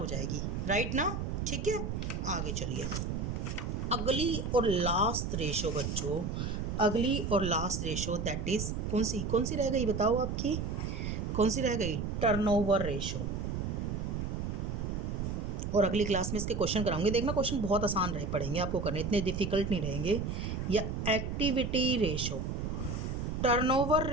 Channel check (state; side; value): noise; right; rumble, 2 dB below the sound